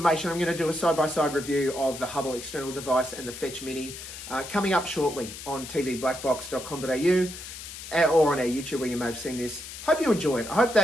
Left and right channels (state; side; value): noise; left; hiss, 11 dB below the sound